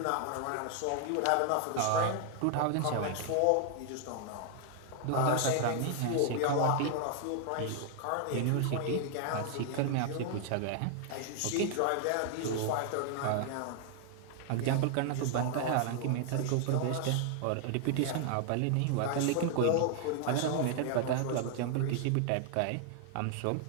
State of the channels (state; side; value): different; both; correlation 0.00